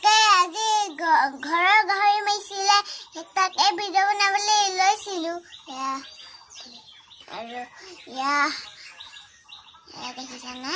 আজি ঘৰৰ গাহৰি মাৰিছিলে, তাকে ভিডিঅ' বনাবলৈ লৈছিলো। আৰু দেখিছানে?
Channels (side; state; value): both; identical; correlation 1.00